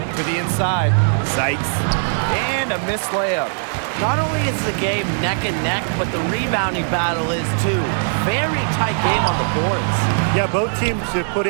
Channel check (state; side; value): silent; left; digital silence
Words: To the inside. Sykes. And a missed layup. Not only is the game neck and neck, but the rebounding battle is too. Very tight game on the boards. Yeah, both teams have put